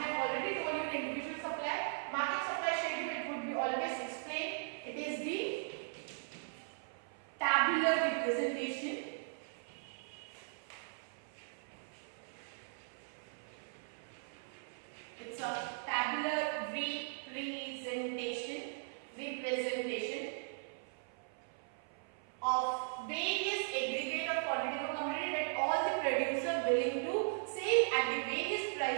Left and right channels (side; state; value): left; silent; 52 dB below the other